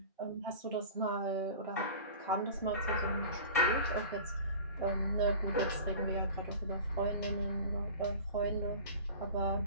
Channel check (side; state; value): both; inverted; correlation -0.38